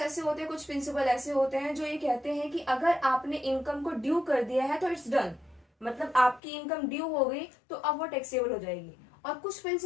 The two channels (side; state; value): right; drops out; at 6.4 s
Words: होते हैं, कुछ प्रिंसिपल ऐसे होते हैं जो ये कहते हैं कि अगर आपने इनकम को ड्यू कर दिया है तो इट्स डन, मतलब आपकी इनकम ड्यू हो गई तो अब वो टैक्सेबल हो जाएगी। और कुछ